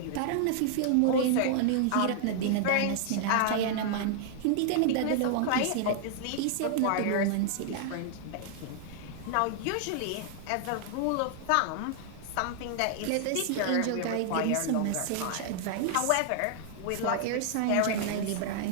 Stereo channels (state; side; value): different; both; correlation -0.01